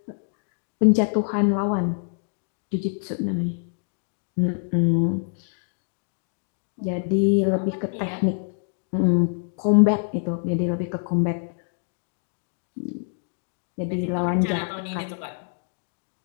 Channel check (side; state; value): right; silent; digital silence